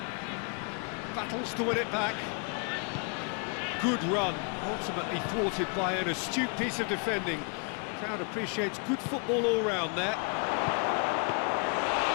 Battles to win it back. Good run, ultimately thwarted by an astute piece of defending. Crowd appreciates good football all round there.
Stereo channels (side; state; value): right; quieter; 38.7 dB